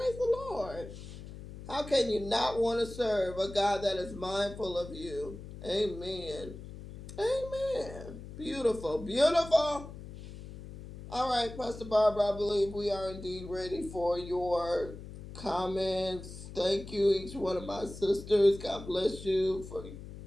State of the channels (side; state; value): left; noise; hum, 13 dB below the sound